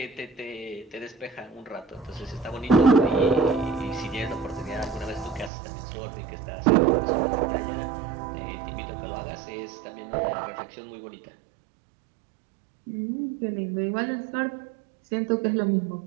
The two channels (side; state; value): left; drops out; at 5.5 s